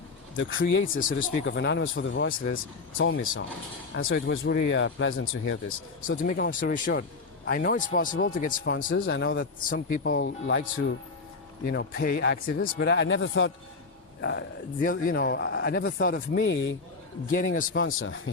creator, so to speak, of Anonymous for the Voiceless told me so. And so it was really pleasant to hear this. So to make a long story short, I know it's possible to get sponsors. I know that some people like to, pay activists, but I never thought, I never thought of me getting a sponsor, you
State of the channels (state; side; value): quieter; right; 4.1 dB